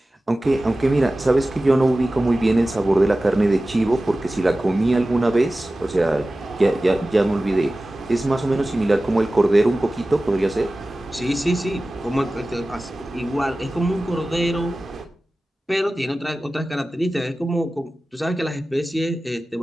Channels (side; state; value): both; normal; correlation 0.96